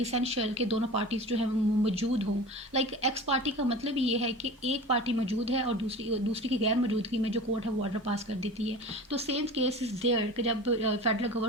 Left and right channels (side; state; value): both; normal; correlation 0.35